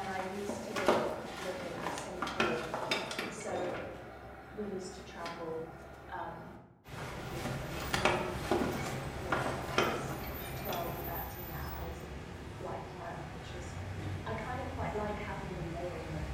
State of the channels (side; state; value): both; identical; correlation 1.00